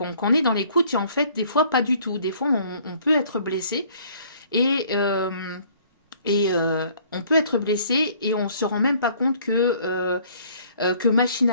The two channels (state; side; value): inverted; both; correlation -0.58